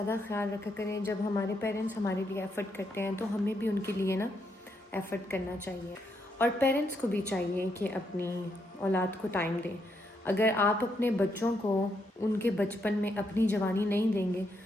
ख्याल रखा करें। जब हमारे पेरेंट्स हमारे लिए एफ़र्ट करते हैं तो हमें भी उनके लिए ना एफ़र्ट करना चाहिए। और पेरेंट्स को भी चाहिए कि अपनी औलाद को टाइम दें। अगर आप अपने बच्चों को उनके बचपन में अपनी जवानी नहीं देंगे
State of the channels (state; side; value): normal; both; correlation 0.78